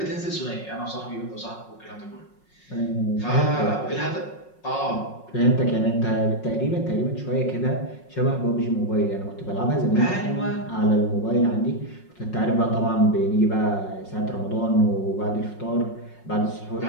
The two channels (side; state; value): right; late; 5.5 ms